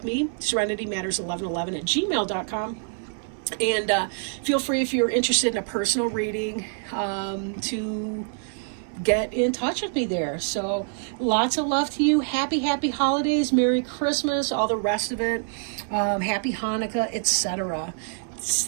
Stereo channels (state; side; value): silent; left; digital silence